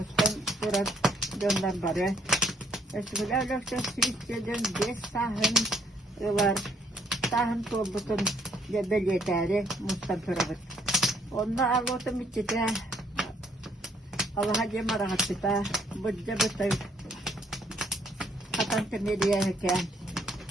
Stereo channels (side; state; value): both; normal; correlation 0.67